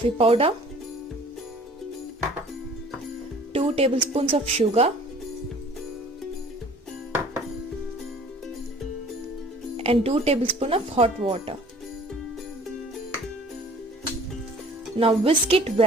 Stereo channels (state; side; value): normal; both; correlation 0.50